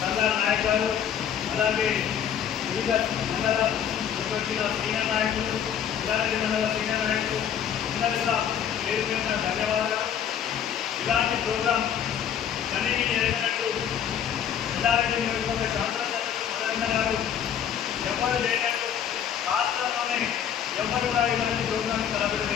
సంగార నాయక్ గారు, అలాగే వివిధ మండల వచ్చిన సీనియర్ నాయకులు, ఎల్లారెడ్డి మండల సీనియర్ నాయకులు అందరూ కూడా పేరు పేరున ధన్యవాదాలు. ఇలాంటి ప్రోగ్రాం కనీని ఎరగనట్టు ఎల్లారెడ్డి నియోజకవర్గ శాసనసభ్యులు మదన్న గారు ఎవరు లేనట్టు రాష్ట్రంలోనే ఎవరు కూడా ఇలాంటి ప్రోగ్రాంని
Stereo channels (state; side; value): quieter; right; 8.9 dB